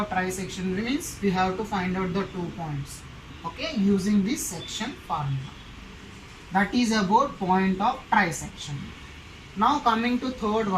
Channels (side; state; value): both; identical; correlation 1.00